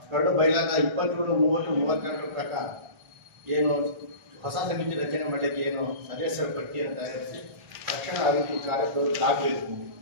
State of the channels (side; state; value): left; late; 1.5 ms